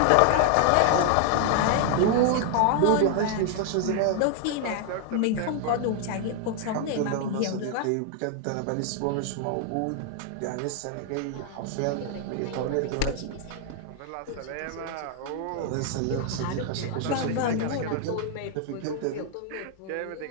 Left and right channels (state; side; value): different; both; correlation 0.00